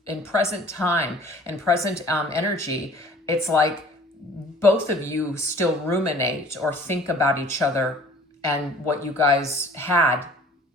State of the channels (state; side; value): normal; both; correlation 0.50